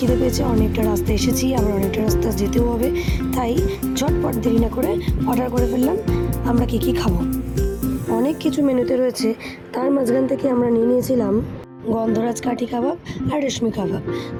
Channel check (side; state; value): both; identical; correlation 1.00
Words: পেয়েছে, অনেকটা রাস্তা এসেছি, আবার অনেকটা রাস্তা যেতেও হবে, তাই ঝটপট দেরি না করে অর্ডার করে ফেললাম। আমরা কী কী খাবো? অনেক কিছু মেনুতে রয়েছে, তার মাঝখান থেকে আমরা নিয়ে নিয়েছিলাম গন্ধরাজ কাঠি কাবাব আর রেশমি কাবাব।